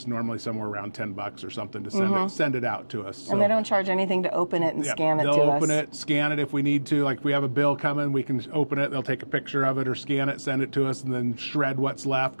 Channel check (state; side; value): inverted; both; correlation -1.00